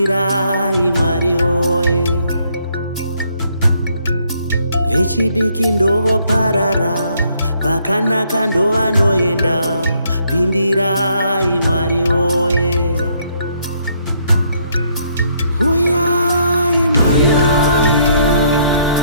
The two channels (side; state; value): both; inverted; correlation -0.70